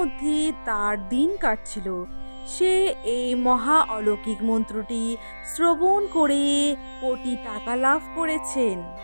তার দিন কাটছিল। সে এই মহা অলৌকিক মন্ত্রটি শ্রবণ করে কোটি টাকা লাভ করেছেন।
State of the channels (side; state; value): both; inverted; correlation -1.00